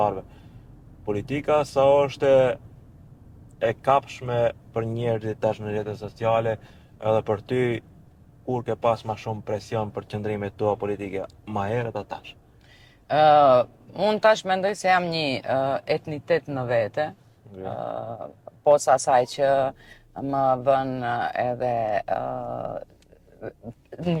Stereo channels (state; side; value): identical; both; correlation 1.00